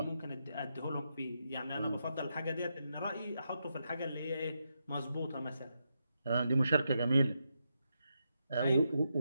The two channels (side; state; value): both; inverted; correlation -0.84